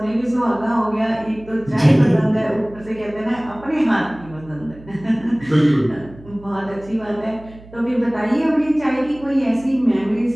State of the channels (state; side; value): noise; right; hum, 20 dB below the sound